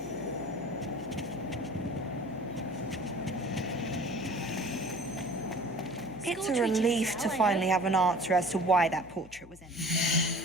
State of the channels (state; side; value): noise; left; hum, 20 dB below the sound